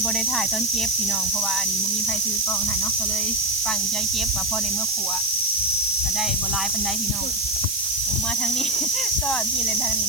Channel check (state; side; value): noise; right; hiss, 2 dB below the sound